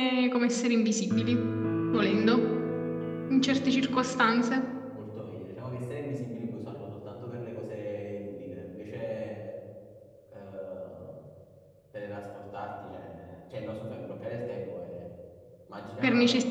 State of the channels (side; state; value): both; identical; correlation 1.00